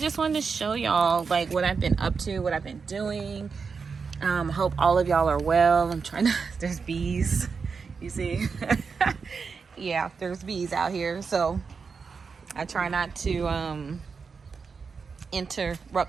wanted to show y'all like what I've been up to, what I've been doing. Hope all of y'all are well. I'm trying to, there's bees, you see. Yeah, there's bees out here, so I try not to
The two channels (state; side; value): quieter; left; 5.3 dB